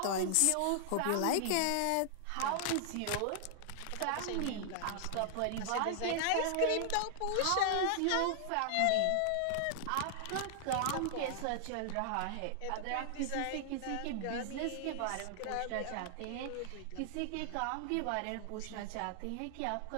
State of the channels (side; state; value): both; different; correlation -0.01